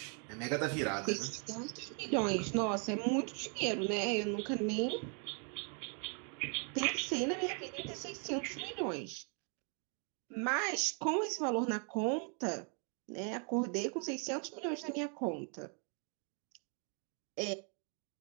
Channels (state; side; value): quieter; left; 40.0 dB